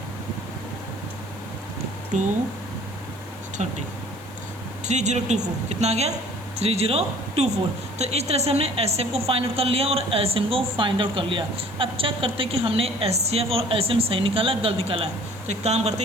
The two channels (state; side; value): noise; left; hiss, 23 dB below the sound